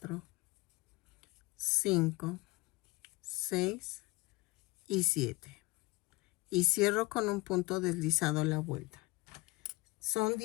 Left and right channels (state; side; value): quieter; right; 23.0 dB